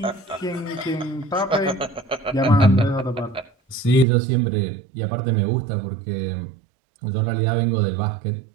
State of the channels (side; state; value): left; drops out; at 4.0 s